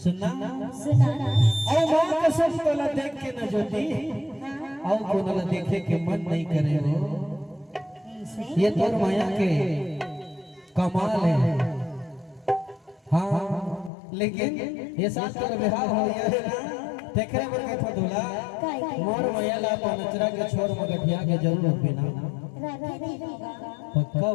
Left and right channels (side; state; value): right; drops out; at 13.9 s